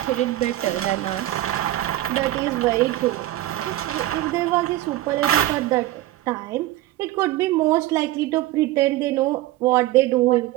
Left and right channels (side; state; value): left; quieter; 15.6 dB